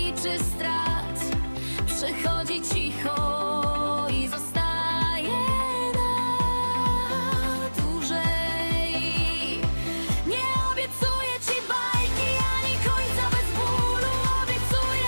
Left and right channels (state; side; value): inverted; both; correlation -1.00